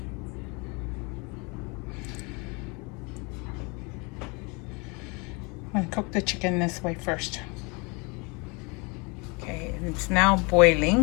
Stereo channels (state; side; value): quieter; right; 29.8 dB